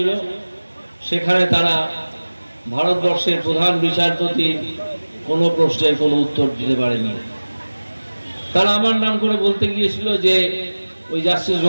সেখানে তারা ভারতবর্ষের প্রধান বিচারপতি কোনো প্রশ্নের কোনো উত্তর দিতে পারেনি। তারা আমার নাম করে বলতে গিয়েছিল যে ওই জাস্টিস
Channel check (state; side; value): inverted; both; correlation -1.00